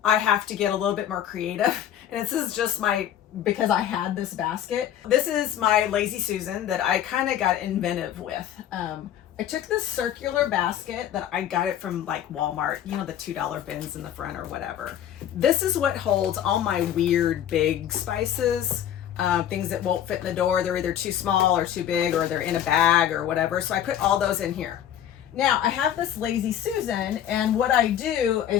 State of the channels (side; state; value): right; quieter; 10.6 dB